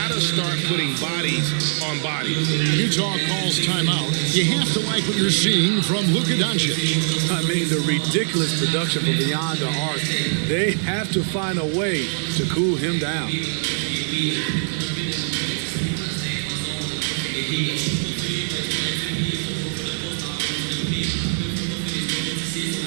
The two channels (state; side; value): silent; left; digital silence